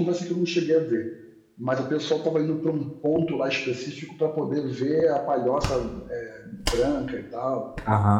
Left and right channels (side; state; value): both; identical; correlation 1.00